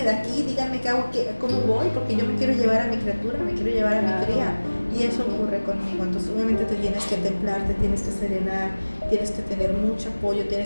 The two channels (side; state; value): both; inverted; correlation -1.00